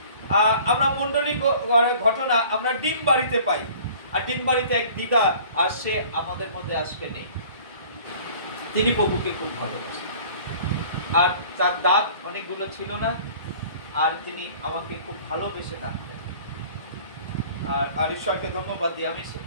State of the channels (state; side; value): inverted; both; correlation -0.48